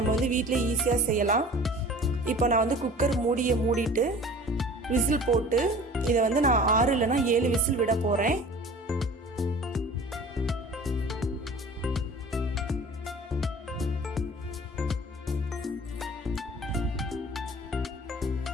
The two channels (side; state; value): both; normal; correlation 0.44